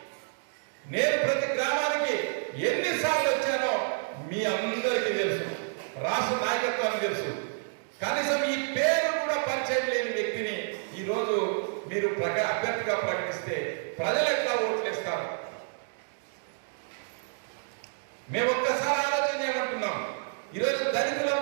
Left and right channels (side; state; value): left; silent; digital silence